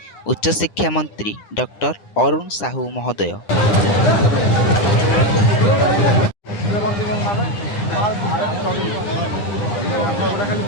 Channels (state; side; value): late; right; 9.8 ms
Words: ଉଚ୍ଚଶିକ୍ଷା ମନ୍ତ୍ରୀ ଡକ୍ଟର ଅରୁଣ ସାହୁ ମହୋଦୟ।